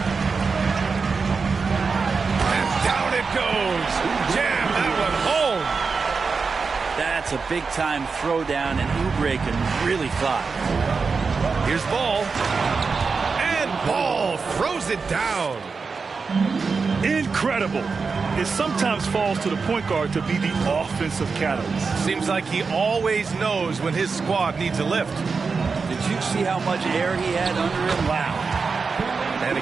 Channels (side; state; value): left; quieter; 4.8 dB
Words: And down it goes. Jam that one home. That's a big-time throwdown, and Oubre can really fly. Here's Ball. And Ball throws it down. Incredible. It sometimes falls to the point guard to be the offensive catalyst. Seems like he always knows when his squad needs a lift. Did you see how much air he had under him? Wow. And